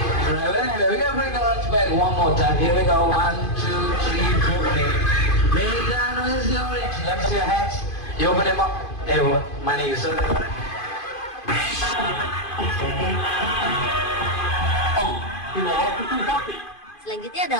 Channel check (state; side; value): late; right; 2.5 ms